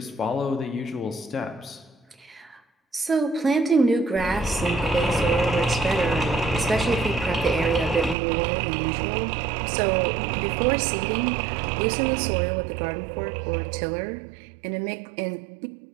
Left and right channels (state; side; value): drops out; left; at 8.2 s